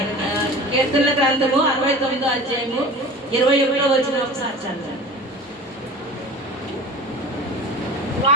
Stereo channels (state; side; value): normal; both; correlation 0.38